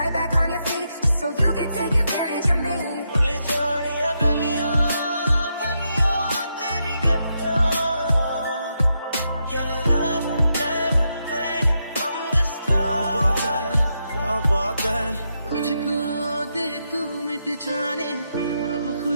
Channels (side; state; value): both; inverted; correlation -0.82